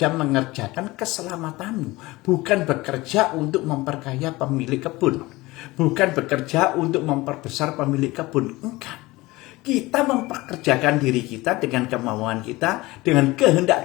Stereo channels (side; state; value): right; quieter; 20.5 dB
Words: mengerjakan keselamatanmu. Bukan bekerja untuk memperkaya pemilik kebun. Bukan bekerja untuk memperbesar pemilik kebun. Enggak. Kita mempekerjakan diri kita dengan kemauan kita, dengan